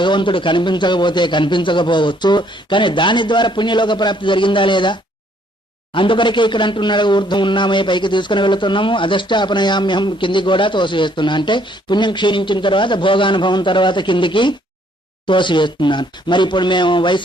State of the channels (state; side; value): normal; both; correlation 0.66